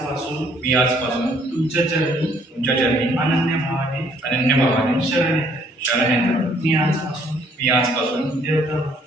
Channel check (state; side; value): normal; both; correlation 0.63